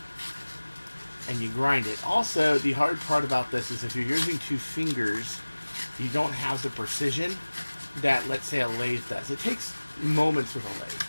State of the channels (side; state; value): both; inverted; correlation -1.00